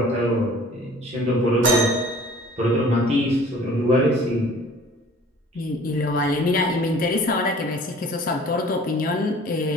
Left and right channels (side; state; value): both; normal; correlation 0.49